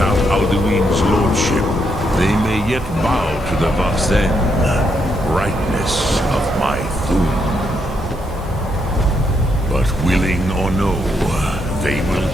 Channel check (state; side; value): normal; both; correlation 0.77